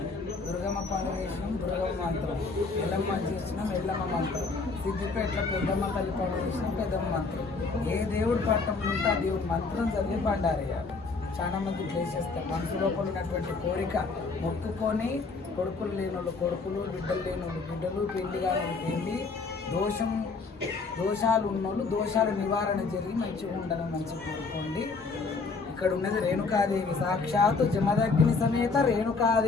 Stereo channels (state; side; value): quieter; right; 4.2 dB